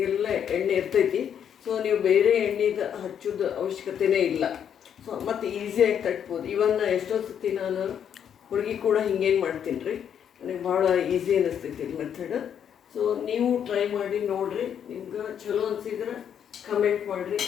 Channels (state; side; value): quieter; right; 8.6 dB